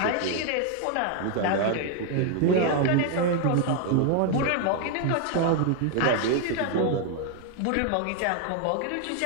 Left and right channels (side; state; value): both; different; correlation 0.00